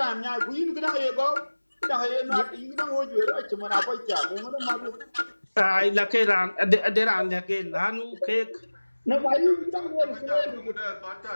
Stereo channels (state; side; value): inverted; both; correlation -1.00